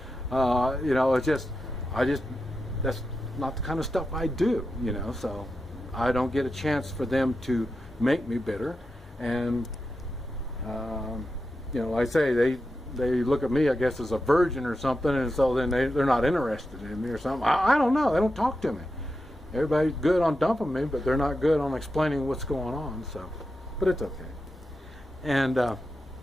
You know, it's just, that's not the kind of stuff I do, you know, so I don't get a chance for them to make me bitter. And, you know, like I say, they look at me, I guess, as a virgin or something, and so then they're not interested in me or something. I don't know. They don't talk to me. Everybody's good on dumping me, but they're not good on explaining what's going on. So, but it's okay. And but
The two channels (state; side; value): normal; both; correlation 0.89